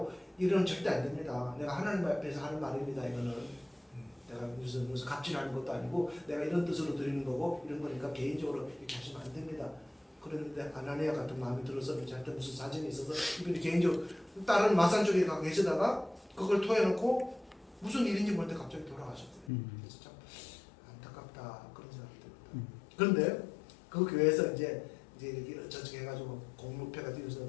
이러면 절대 안 됩니다. 내가 하나님 앞에서 하는 말입니다. 이거는 내가 무슨 갑질하는 것도 아니고 내가 이런 뜻으로 드리는 거고 이런 거니까 개인적으로 이렇게 하시면 안 됩니다. 그런데 아나니아 같은 마음이 들어서 저한테 무슨 사정이 있어서 이분이 개인적으로 다른 마산 쪽에 가 계시다가 그걸 토해놓고 무슨 일인지 모르는데 갑자기 돌아가셨어요. 그래서 참 안타깝다 그런 생각이 듭니다. 그런데 그 교회에서 이제 이렇게 저렇게 해가지고 공로패가 뒤에서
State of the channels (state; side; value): drops out; right; at 19.5 s